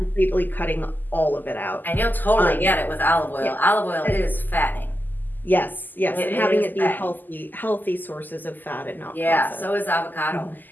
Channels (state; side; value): late; right; 0.087 ms